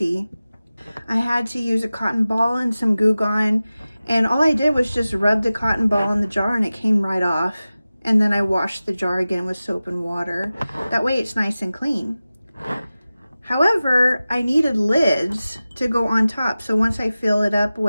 I had to use a cotton ball and some Goo Gone, and all I did was just rub the cotton ball in the jar and it came right off. And then I washed the jar again with soap and water. That way it's nice and clean. However, I needed lids to go on top. So once I fill it up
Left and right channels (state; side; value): inverted; both; correlation -0.96